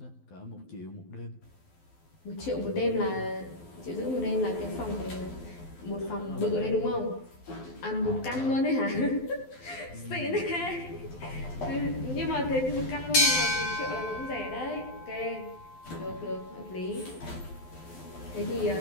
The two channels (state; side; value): late; right; 12 ms